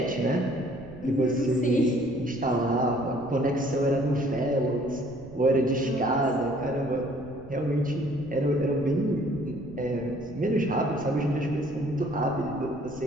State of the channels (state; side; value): noise; right; rumble, 19 dB below the sound